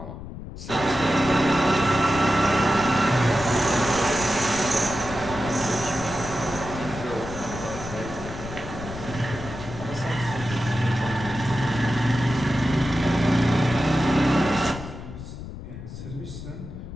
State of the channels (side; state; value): left; noise; rumble, 11 dB below the sound